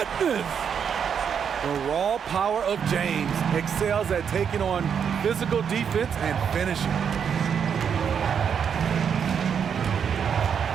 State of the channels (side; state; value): left; quieter; 7.4 dB